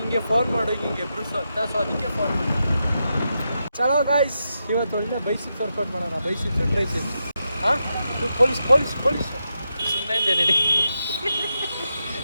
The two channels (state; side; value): inverted; both; correlation -0.86